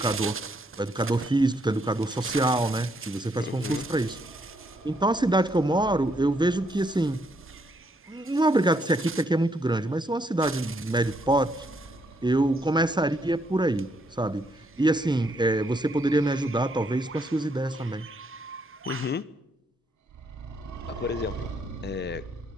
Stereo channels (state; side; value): normal; both; correlation 0.73